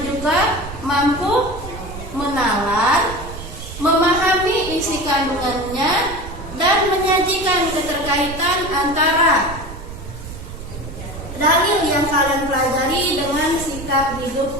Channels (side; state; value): right; noise; rumble, 11 dB below the sound